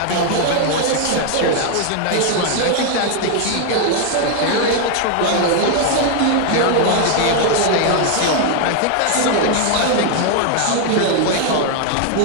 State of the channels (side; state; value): both; different; correlation 0.00